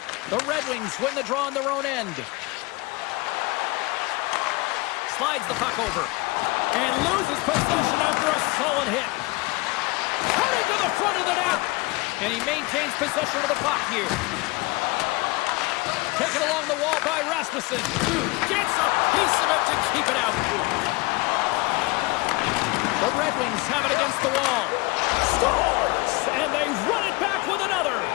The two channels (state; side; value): quieter; right; 23.9 dB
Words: The Red Wings win the draw on their own end. Slides the puck over. And loses possession after a solid hit. Heading to the front of the net. And he maintains possession of the puck here. Taken along the wall by Rasmussen. Gets a piece of it to keep it out. The Red Wings have it against the wall. Scores! And they run it back with another.